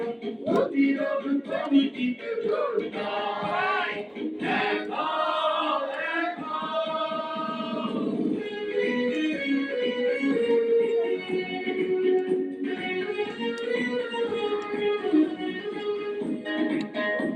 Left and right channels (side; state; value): both; identical; correlation 1.00